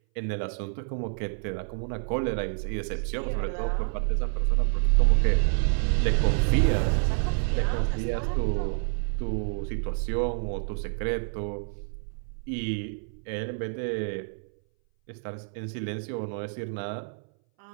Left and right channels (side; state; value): left; silent; 59 dB below the other